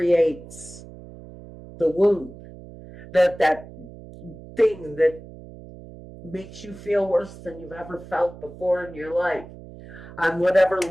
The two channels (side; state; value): right; noise; hum, 17 dB below the sound